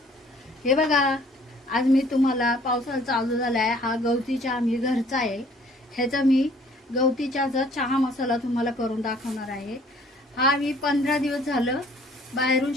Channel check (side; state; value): both; normal; correlation 0.57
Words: हे बघा, आज मी तुम्हाला पावसाळा चालू झाला आहे, हा गवती चहा मी घरचा आहे. ह्याचा मी गवती चहाचा चहा मसाला तुम्हाला करून दाखवणार आहे. हा मी 15 दिवस झालं बाहेरून